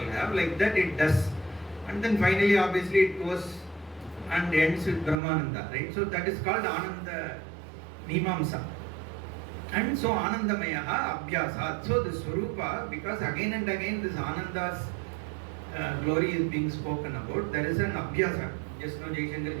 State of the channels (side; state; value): left; drops out; at 5.2 s